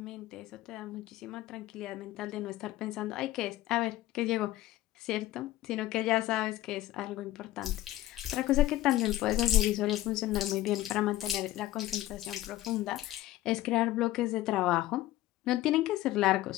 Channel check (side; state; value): right; quieter; 15.4 dB